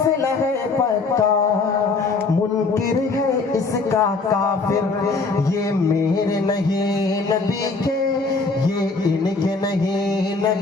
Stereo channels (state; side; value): quieter; right; 4.0 dB